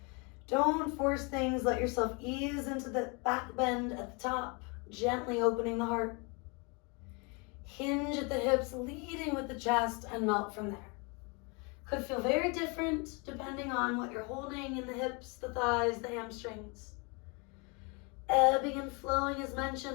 Don't force things. Let yourself ease into the back bend at the top, gently opening the heart. Hinge at the hips, leading with the chest, and melt from there. Could feel very different depending on what you're holding in the hips, the thighs, the hamstrings. Ebbing and flowing as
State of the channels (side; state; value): right; quieter; 31.4 dB